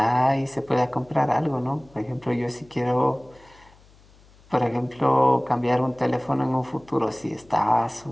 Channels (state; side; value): noise; left; hum, 27 dB below the sound